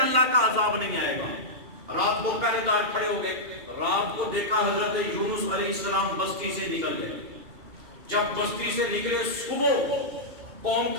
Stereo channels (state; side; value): late; left; 2.8 ms